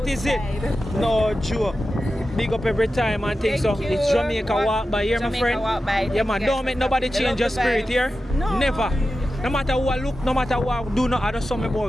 is it. No joke. Big up every time and things. So Thank you. it's Jamaica walk by here, my Jamaica friend. walk by. Yeah, man. Thank you Don't guys make for nobody coming. change I your love the spirit vibes. here. No. Never. No matter what look, no matter what do, not other some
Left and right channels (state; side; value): normal; both; correlation 0.92